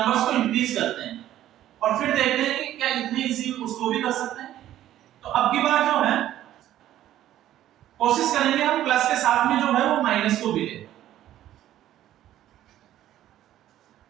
को इंक्रीज करते हैं और फिर देखते हैं कि क्या इतनी इजी उसको भी कर सकते हैं। तो अब की बार जो है कोशिश करेंगे हम प्लस के साथ में जो है वो माइनस को भी ले।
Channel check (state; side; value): quieter; left; 12.8 dB